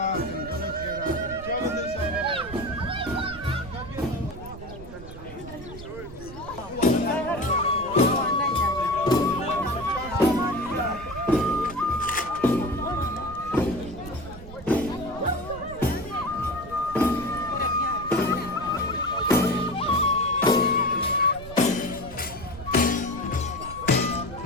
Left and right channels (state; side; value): noise; right; rumble, 15 dB below the sound